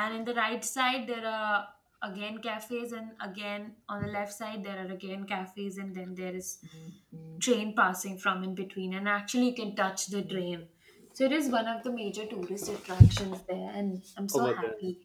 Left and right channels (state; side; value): identical; both; correlation 1.00